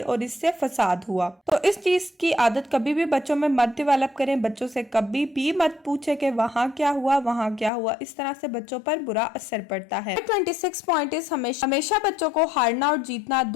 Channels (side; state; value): right; drops out; at 7.7 s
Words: और इससे फसाद हुआ। तो इस चीज की आदत कभी भी बच्चों में मत डेवलप करें। बच्चों से कभी भी मत पूछे कि वहाँ क्या हुआ, वहाँ क्या हुआ। इस तरह से बच्चों पर बुरा असर पड़ता है। 26 पॉइंट इस हमेशा बच्चों को हारना और जीतना